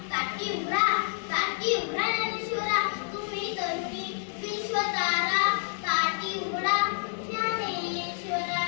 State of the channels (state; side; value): silent; right; digital silence